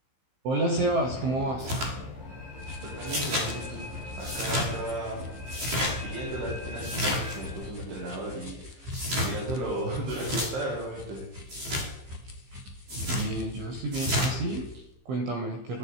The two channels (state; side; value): late; left; 15 ms